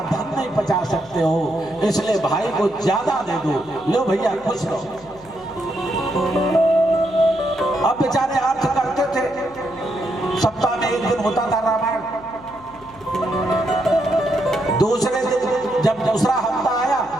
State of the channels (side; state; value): left; noise; hum, 24 dB below the sound